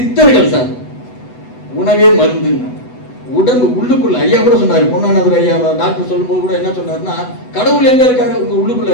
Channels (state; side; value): late; right; 8.1 ms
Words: சார் உணவே மருந்து. உடம்பு உள்ளுக்குள்ள ஐயா கூட சொன்னாரு, பொன்னானவர் ஐயா டாக்டர் சொல்லும்போது கூட என்ன சொன்னாருன்னா, கடவுள் எங்க இருக்காரு? உங்க உள்ளுக்குள்ள